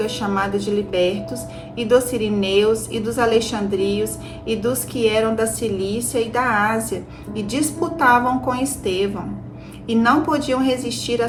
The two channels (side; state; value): both; identical; correlation 1.00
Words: chamada de libertos, e dos sirineus, e dos alexandrios, e dos que eram da Cilícia e da Ásia, e disputavam com Estevão. E não podiam resistir à